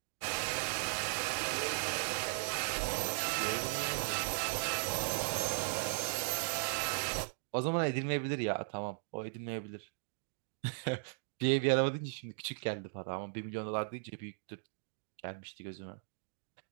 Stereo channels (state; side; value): silent; left; digital silence